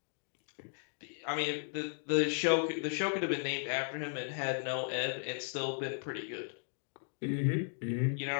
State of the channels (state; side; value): silent; right; 54 dB below the other